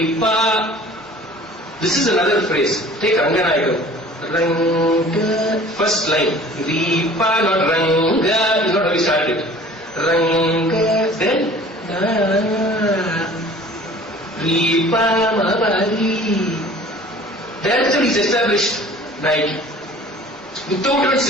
this is another phrase. Take Ranganayakam. Ranga, first line. Repa, not Ranga, is not how we started. Ranga, then Repa, Mapari. That's how he's established Nayaki. Without even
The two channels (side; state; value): both; normal; correlation 0.47